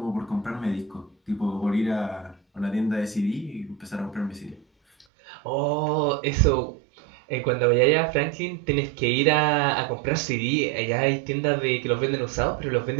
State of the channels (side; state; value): left; drops out; at 5.1 s